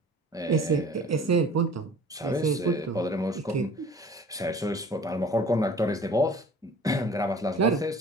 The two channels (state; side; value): normal; both; correlation 0.47